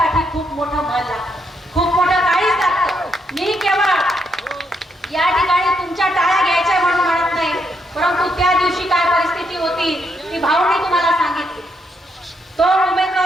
खूप मोठं मन लागतं, खूप मोठं काळीज लागतं. मी केवळ या ठिकाणी तुमच्या टाळ्या घ्यायच्या म्हणून म्हणत नाही, परंतु त्या दिवशी काय परिस्थिती होती ती भाऊंनी तुम्हाला सांगितली. तो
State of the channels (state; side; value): normal; both; correlation 0.77